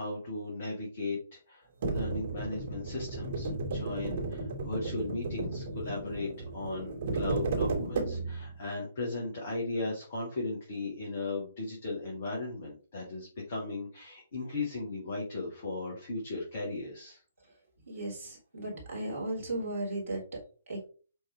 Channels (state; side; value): inverted; both; correlation -0.65